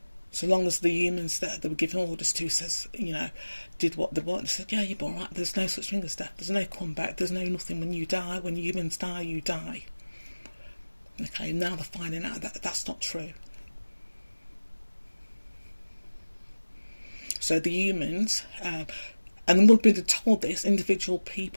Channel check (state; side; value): inverted; both; correlation -1.00